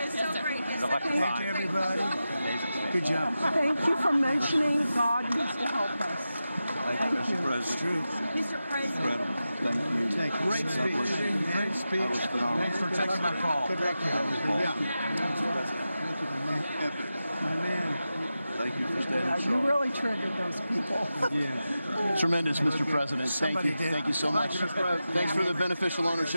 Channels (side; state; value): both; inverted; correlation -0.92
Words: It's so great. Thank you, everybody. Good job. Thank you for mentioning God needs to help us. Thank you, Mr. It's President. true. Mr. President. Thank you. Thank you. Great speech. Great speech. That was phenomenal. Thanks for taking my call. Good luck. Yeah. My man. Thank you for standing You strong. really triggered those people. Yeah. Tremendous, Mr. President. Thank Somebody you. did. Thank you so much. Thanks for the beneficial